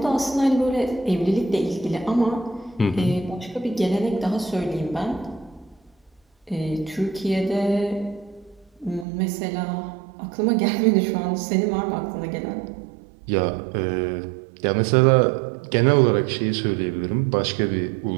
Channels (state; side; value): drops out; left; at 9.1 s